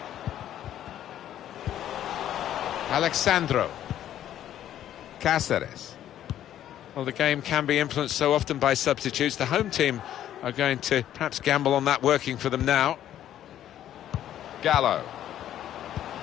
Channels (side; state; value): right; quieter; 11.4 dB